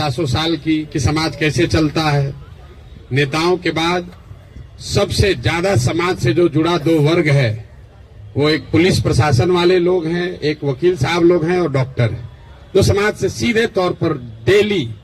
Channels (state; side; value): identical; both; correlation 1.00